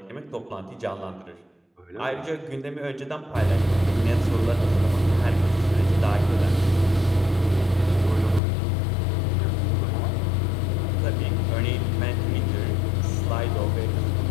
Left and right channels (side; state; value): right; drops out; at 8.4 s